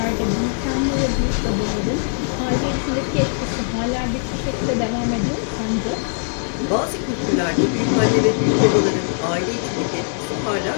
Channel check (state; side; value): silent; right; digital silence